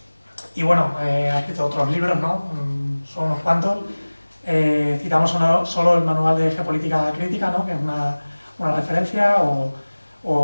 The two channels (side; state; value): both; inverted; correlation -1.00